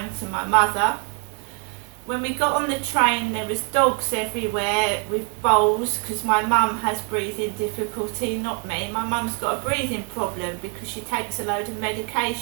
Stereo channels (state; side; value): quieter; left; 33.8 dB